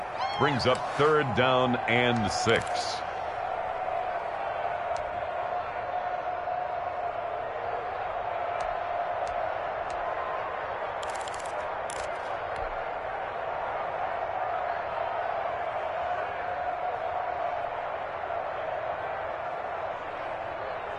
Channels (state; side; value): identical; both; correlation 1.00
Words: Brings up 3rd down and 6.